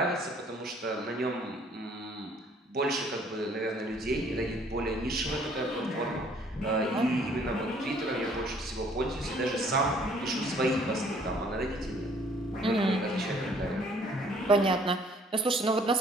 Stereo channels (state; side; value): normal; both; correlation 0.59